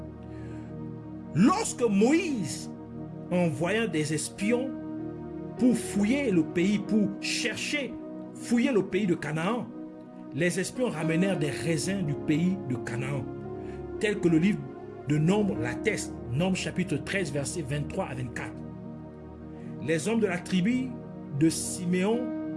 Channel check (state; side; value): identical; both; correlation 1.00